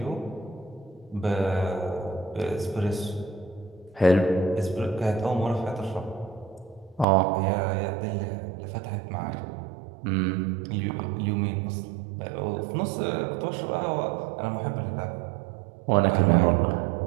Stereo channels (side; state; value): left; drops out; at 7.1 s